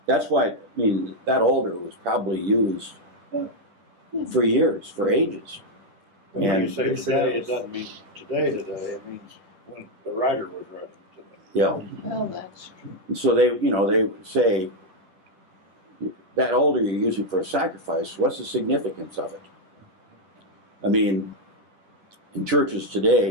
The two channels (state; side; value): late; left; 10 ms